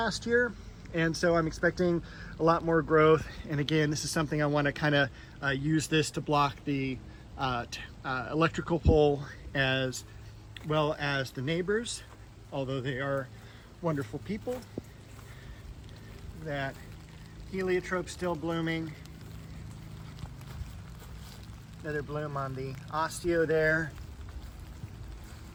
year, and so I'm expecting a lot more growth. And again, this is something I want to kind of use this to block the electrical pole as well as the neighbors, although they are wonderful people. That heliotrope still blooming. Another bloom on the osteo there.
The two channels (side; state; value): both; identical; correlation 1.00